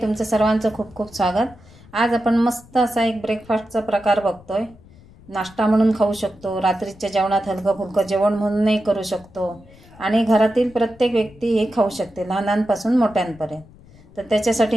सर्वांचं खूप खूप स्वागत। आज आपण मस्त असा एक ब्रेकफास्टचा प्रकार बघतोय। नाश्ता म्हणून खाऊ शकतो, रात्रीच्या जेवणात हलकं फुलकं जेवण म्हणूनही करू शकतो आणि घरातील प्रत्येक व्यक्ती हे खाऊ शकते, लहानांपासून मोठ्यांपर्यंत। तर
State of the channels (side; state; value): left; noise; rumble, 24 dB below the sound